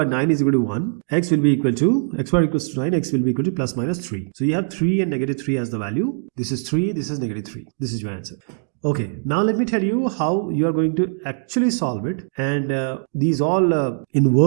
9 is equal to 1, x will be equal to, x squared equals to 9, x will be equal to plus minus 3. So you have 3 and negative 3 as the value, this is 3, this is negative 3, this is your answer. Okay, now let me tell you how you are going to actually solve it, and these all in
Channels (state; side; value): silent; left; digital silence